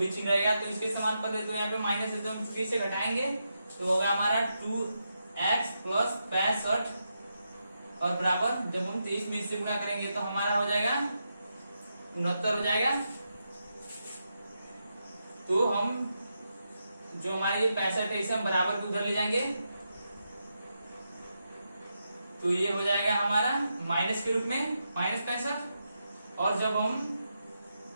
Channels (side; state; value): both; inverted; correlation -0.85